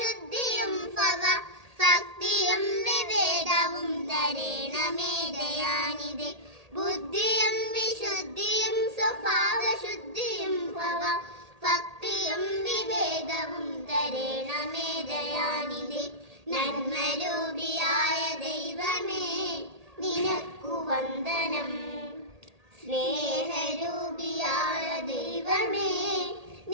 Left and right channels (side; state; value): left; late; 1.8 ms